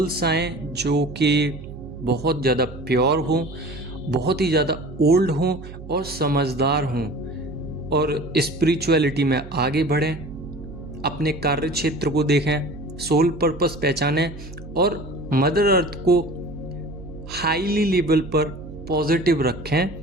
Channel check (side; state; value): right; noise; hum, 14 dB below the sound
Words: आएँ जो कि बहुत ज़्यादा प्योर हों, बहुत ही ज़्यादा ओल्ड हों और समझदार हों और स्पिरिचुअलिटी में आगे बढ़ें, अपने कार्य क्षेत्र को देखें, सोल पर्पस पहचानें और मदर अर्थ को हाईली लेवल पर पॉजिटिव रखें,